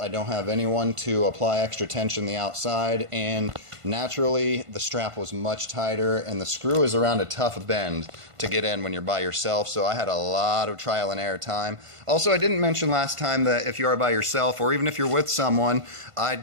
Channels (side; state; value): left; late; 1.5 ms